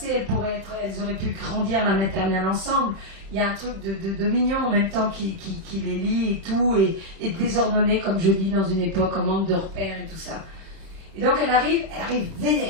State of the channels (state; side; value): late; left; 31 ms